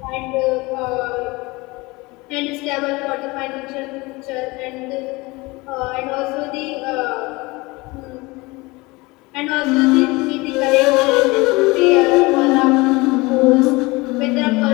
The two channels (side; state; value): right; quieter; 23.4 dB